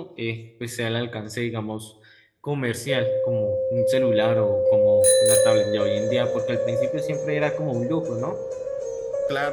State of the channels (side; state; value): both; identical; correlation 1.00